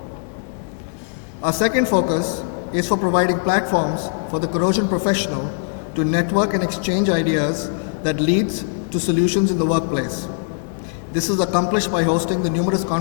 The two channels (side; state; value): right; silent; digital silence